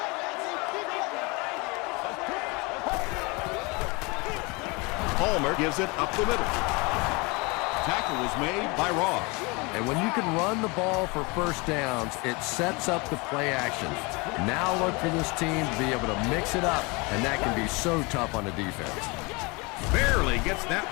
Palmer gives it up the middle. Tackle was made by Ross. And when you can run the ball for first downs, it sets up the play action. Now look for this team to be able to mix it up, and that can be so tough on the defense. Barely gets that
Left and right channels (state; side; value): quieter; right; 27.4 dB